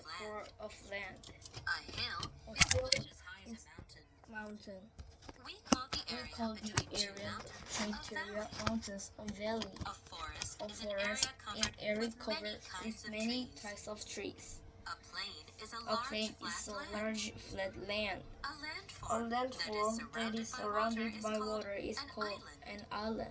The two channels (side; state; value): both; identical; correlation 1.00